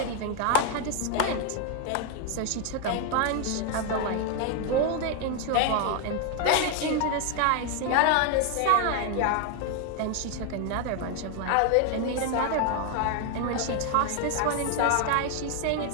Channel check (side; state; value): both; different; correlation 0.01